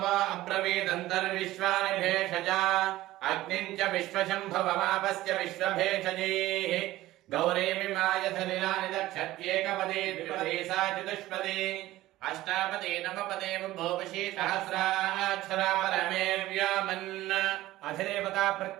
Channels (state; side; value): quieter; left; 16.2 dB